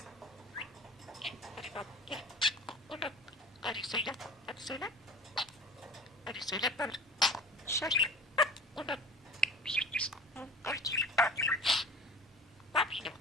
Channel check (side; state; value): both; normal; correlation 0.39